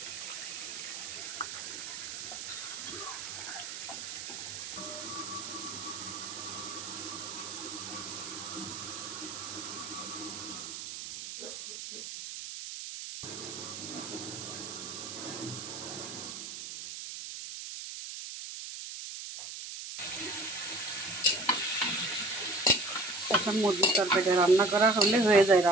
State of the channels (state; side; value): noise; right; hiss, 8 dB below the sound